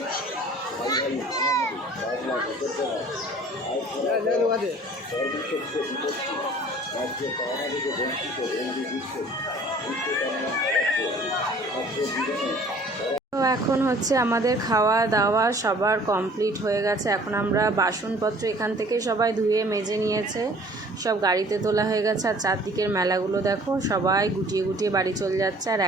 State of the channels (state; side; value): normal; both; correlation 0.52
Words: তো এখন হচ্ছে আমাদের খাওয়া দাওয়া সবার কমপ্লিট হয়ে গেছে। এখন আমরা বাসনপত্র এখান থেকে সবাই ধুয়ে মেজে নিয়েছে, সব গাড়িতে তোলা হয়ে গেছে। আর চারদিকের মেলাগুলো দেখো, সবাই গুটিয়ে গুটিয়ে বাড়ি চলে যাচ্ছে। আর